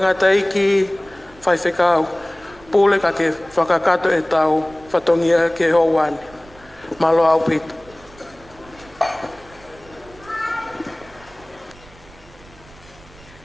eiki whai whekau. Pule ka ke whakakato e tau whatongia ke hoani. Malo au pita.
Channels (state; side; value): noise; right; rumble, 24 dB below the sound